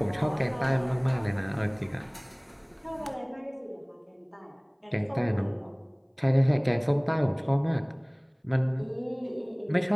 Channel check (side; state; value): both; identical; correlation 1.00